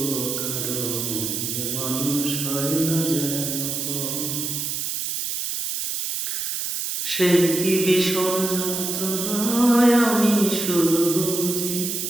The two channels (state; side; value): noise; right; hiss, 2 dB below the sound